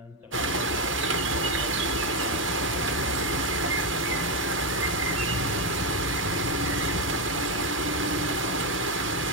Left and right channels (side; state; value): both; normal; correlation 0.06